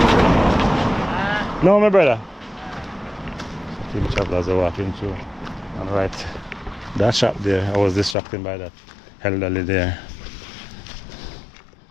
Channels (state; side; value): drops out; right; at 8.2 s